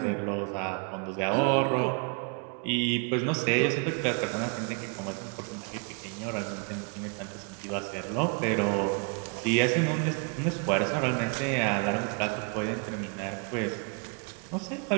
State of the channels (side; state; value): left; quieter; 36.2 dB